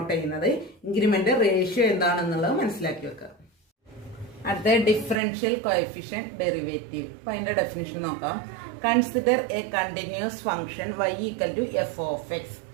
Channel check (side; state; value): left; drops out; at 5.2 s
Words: ചെയ്യുന്നത്, ഇൻക്രിമെന്റ് റേഷ്യോ എന്താണെന്നുള്ളത് മനസ്സിലാക്കി വെക്കുക. അടുത്ത ഡിഫറൻഷ്യൽ കോഎഫിഷ്യന്റ് ഡെറിവേറ്റീവ്. അപ്പൊ അതിന്റെ ഡെഫിനിഷൻ നോക്കാം. Consider a continuous function y equal to f of x.